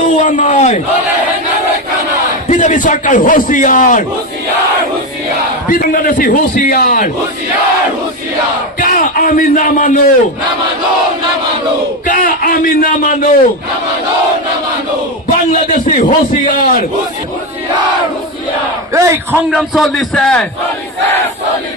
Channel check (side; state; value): both; normal; correlation 0.14